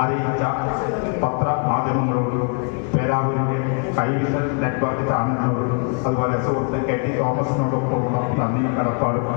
അറിയിച്ച പത്രമാധ്യമങ്ങളോടും പേരാവൂരിന്റെ കൈവിഷൻ നെറ്റ്വർക്ക് ചാനലിനോടും അതുപോലെ സുഹൃത്ത് KT തോമസിനോടൊപ്പമുള്ള നന്ദി കടപ്പാടും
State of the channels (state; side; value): quieter; right; 39.9 dB